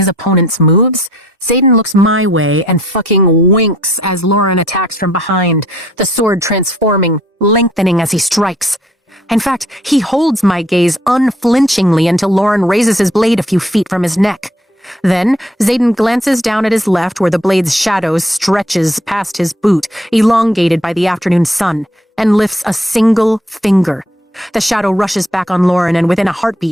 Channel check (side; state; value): both; normal; correlation 0.63